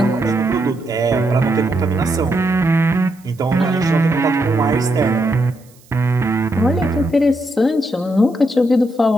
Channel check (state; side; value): noise; right; hiss, 29 dB below the sound